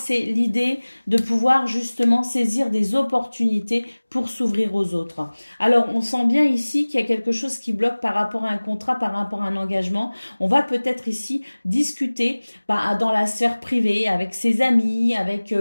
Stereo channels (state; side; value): inverted; both; correlation -1.00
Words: l'idée de pouvoir justement saisir des opportunités pour s'ouvrir aux autres. Alors, on sent bien ici qu'il y a quelque chose qui bloque par rapport à un contrat, par rapport à un engagement. On va peut-être ici discuter dans la sphère privée, avec ses amis, avec,